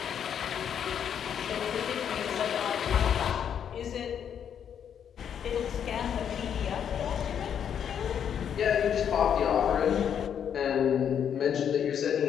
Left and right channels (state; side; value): quieter; right; 8.5 dB